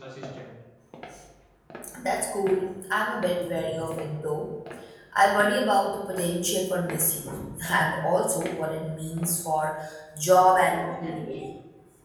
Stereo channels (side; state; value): both; identical; correlation 1.00